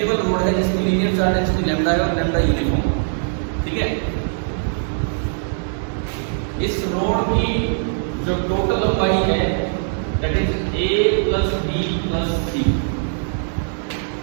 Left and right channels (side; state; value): left; silent; digital silence